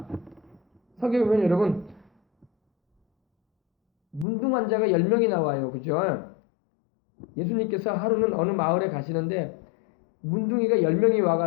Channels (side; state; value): right; drops out; at 4.2 s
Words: 성경에 보면 여러분 문둥 환자가 10명이 나와요. 그죠? 예수님께서 하루는 어느 마을에 가시는데 문둥이가 10명이